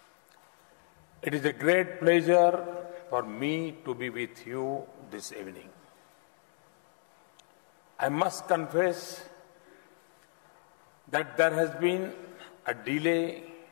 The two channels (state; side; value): silent; right; 56 dB below the other